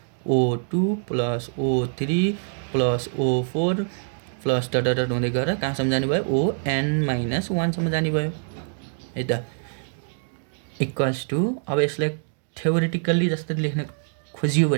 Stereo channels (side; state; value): left; silent; digital silence